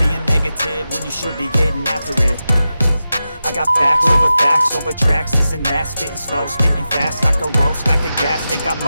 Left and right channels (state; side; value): inverted; both; correlation -0.92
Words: being negative when you should be getting after it. I got facts over tracks, this and that. Spitting slow, spitting fast, I can roast, I can gas. Think I'm